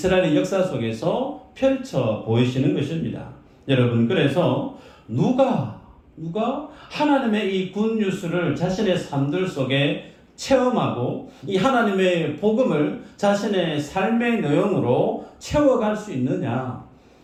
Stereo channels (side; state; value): both; identical; correlation 1.00